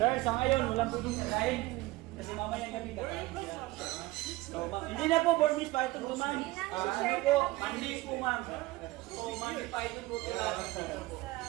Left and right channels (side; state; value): left; quieter; 19.7 dB